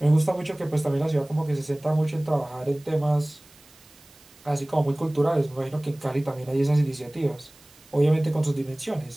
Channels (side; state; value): right; noise; hiss, 26 dB below the sound